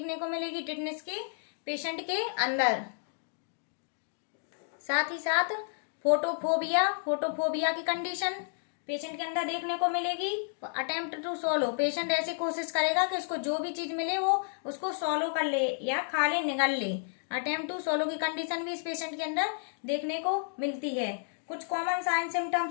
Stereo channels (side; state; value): right; silent; digital silence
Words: को मिलेगी टिटनेस के पेशेंट के अंदर। साथ ही साथ फोटोफोबिया की कंडीशन पेशेंट के अंदर देखने को मिलेगी। अटेम्प्ट टू सॉलो, पेशेंट ऐसी कोशिश करेगा कि उसको जो भी चीज मिले वो उसको सॉलो कर ले या खा ले, निगल ले। अटेम्प्ट टू सॉलो की कंडीशन भी इस पेशेंट के अंदर देखने को मिलती है। कुछ कॉमन साइन